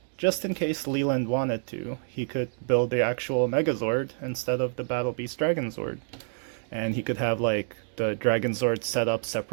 just in case Leland wanted to, he could build the actual Megazord instead of the Battle Beast Dragonzord, and he could have like the Dragonzord set up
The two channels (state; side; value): silent; left; digital silence